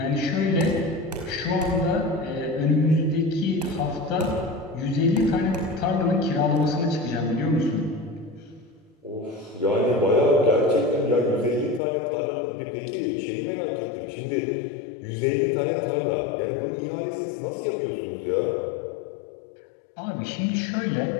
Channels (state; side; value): drops out; right; at 11.8 s